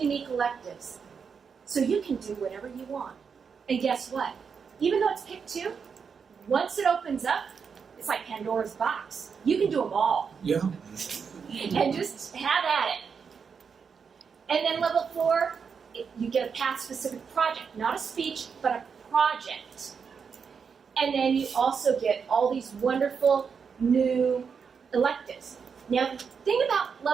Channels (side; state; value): left; quieter; 6.1 dB